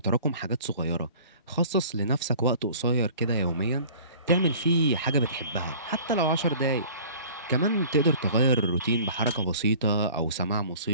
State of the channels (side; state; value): both; inverted; correlation -0.47